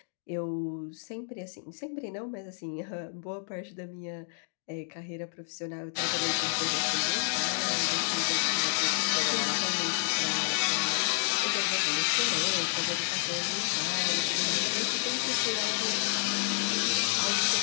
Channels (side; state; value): right; silent; digital silence